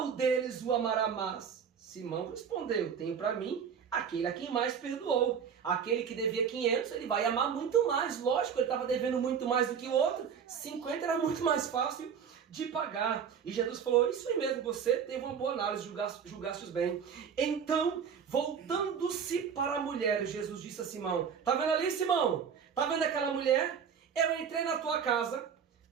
deles o amará mais? Simão respondeu: tenho para mim aquele a quem mais perdoou. Aquele que devia 500, ele vai amar muito mais. Lógico, ele estava devendo muito mais do que o outro. 50 era muito mais fácil de pagar. E Jesus falou: isso aí mesmo, você teve uma boa análise, julgaste bem. Então, voltando-se para a mulher, Jesus disse a Simão: tá vendo ali, Simão? Tá vendo aquela mulher? Eu entrei na tua casa,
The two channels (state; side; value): quieter; left; 7.2 dB